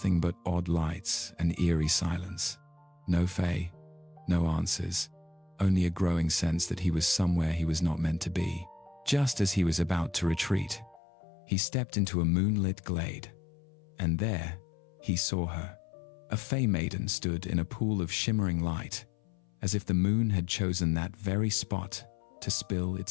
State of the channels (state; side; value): drops out; right; at 11.0 s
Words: but odd lights and eerie silence. No Fae, no answers, only a growing sense that he was somewhere he was not meant to be. Just as he was about to retreat, he stepped into a moonlit glade, and there he saw her. A Fae maiden stood in a pool of shimmering light, as if the moon had chosen that very spot to spill